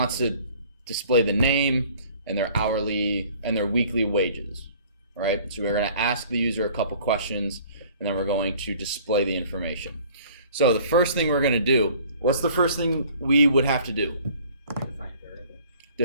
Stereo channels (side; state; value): both; inverted; correlation -0.52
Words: to display the name and their hourly and their weekly wages, right? So we're going to ask the user a couple questions, and then we're going to display the information. So the first thing we're going to do, what's the first thing we would have to do? Define variable.